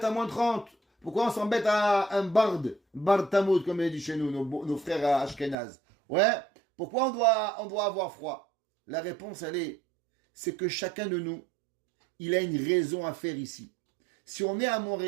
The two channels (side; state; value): left; drops out; at 5.6 s